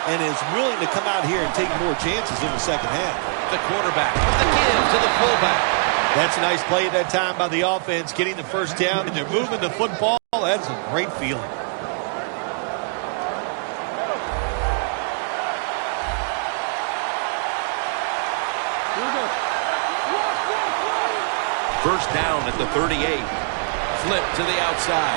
and is willing to come out here and take more chances in the second half. The quarterback with the give to the fullback. That's a nice play at that time by the offense, getting the first down, and they're moving the football. That is a great feeling. First down at the 38. Flip to the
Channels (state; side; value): silent; left; 62 dB below the other